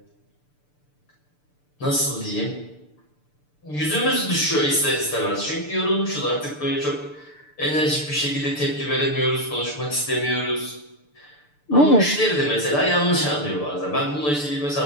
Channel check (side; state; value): right; late; 6.8 ms